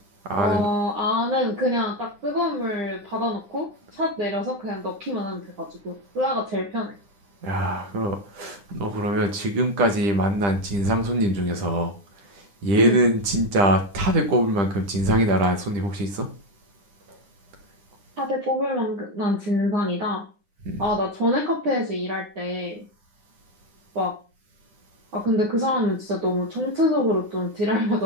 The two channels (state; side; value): late; left; 10 ms